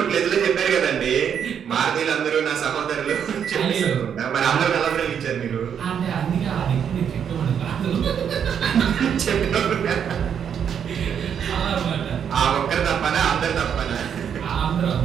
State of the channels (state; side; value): quieter; left; 8.1 dB